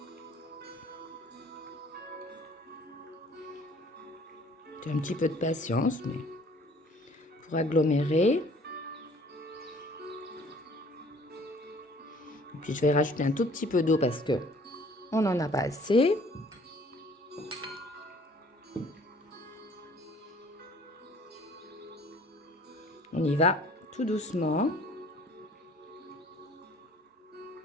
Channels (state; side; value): normal; both; correlation 0.54